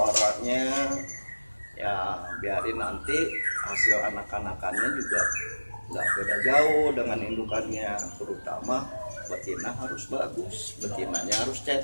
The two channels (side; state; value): both; inverted; correlation -1.00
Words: ya biarin nanti hasil anak-anakannya juga nggak beda jauh dengan indukannya, terutama betina harus bagus, betinanya harus